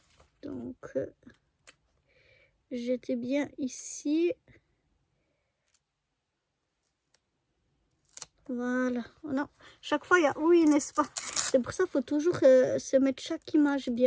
Donc, j'étais bien ici. Voilà. Oh non, chaque fois il y a oui, n'est-ce pas? C'est pour ça qu'il faut toujours se mettre chaque image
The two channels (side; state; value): both; identical; correlation 1.00